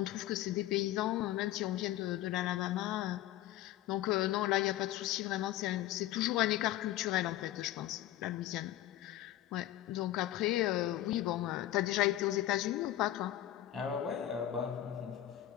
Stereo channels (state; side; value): quieter; right; 13.7 dB